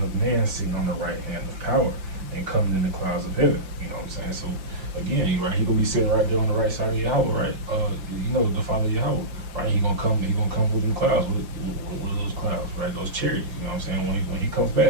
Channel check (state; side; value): late; left; 5.8 ms